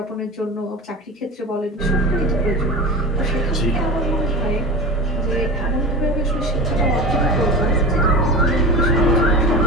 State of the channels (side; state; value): both; normal; correlation 0.31